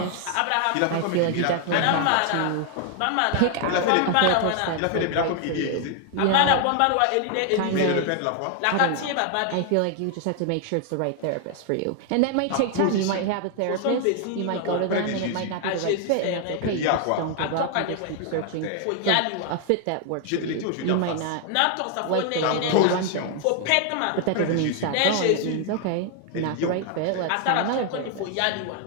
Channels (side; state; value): both; different; correlation 0.00